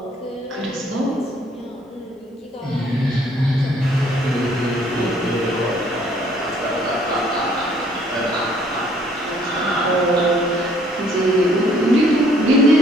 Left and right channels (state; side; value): normal; both; correlation 0.62